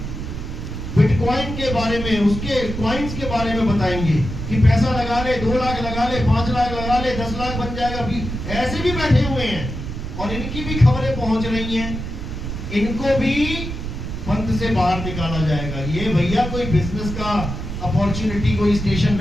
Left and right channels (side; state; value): right; noise; rumble, 6 dB below the sound